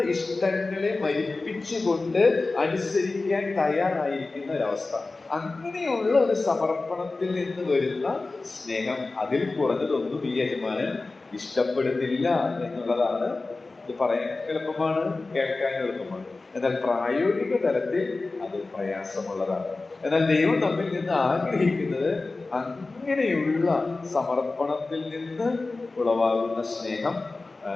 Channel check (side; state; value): right; quieter; 3.5 dB